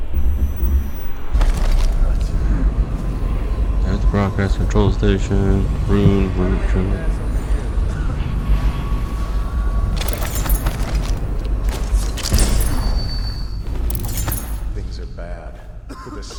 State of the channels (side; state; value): both; identical; correlation 1.00